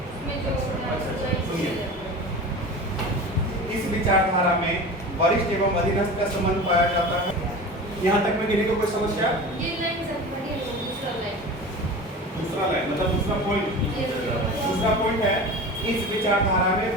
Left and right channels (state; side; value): normal; both; correlation 0.33